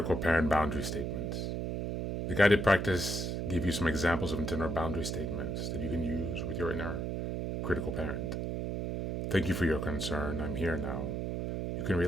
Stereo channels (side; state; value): right; noise; hum, 2 dB below the sound